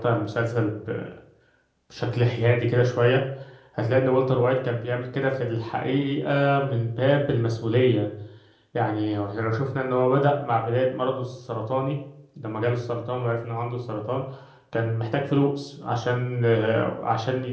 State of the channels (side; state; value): both; identical; correlation 1.00